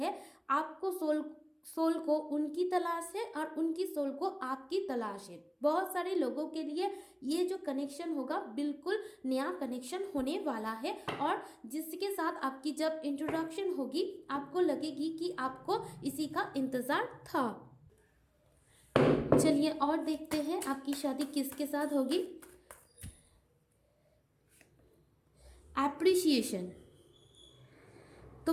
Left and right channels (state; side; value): identical; both; correlation 1.00